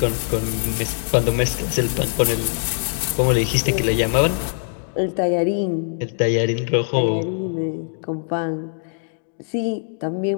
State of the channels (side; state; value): right; silent; digital silence